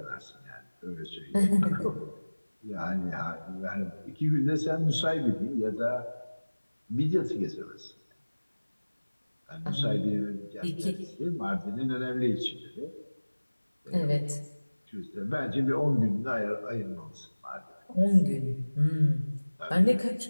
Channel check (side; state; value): both; inverted; correlation -1.00